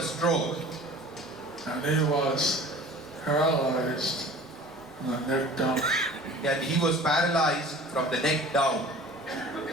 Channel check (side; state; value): both; normal; correlation 0.43